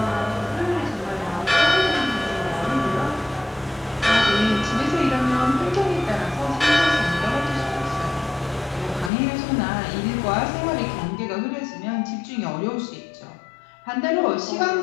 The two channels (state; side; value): drops out; right; at 9.1 s